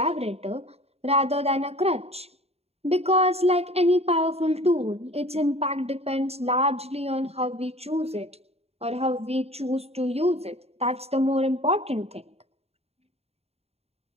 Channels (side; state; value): left; late; 0.30 ms